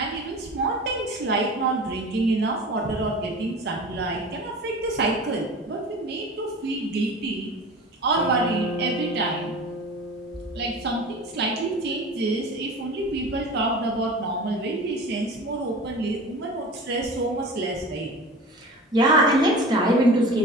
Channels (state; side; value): normal; both; correlation 0.36